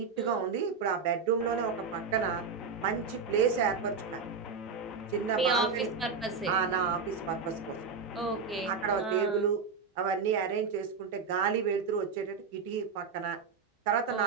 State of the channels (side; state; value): left; quieter; 5.3 dB